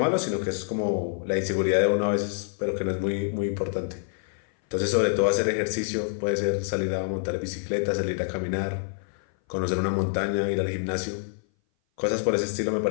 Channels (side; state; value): right; silent; 58 dB below the other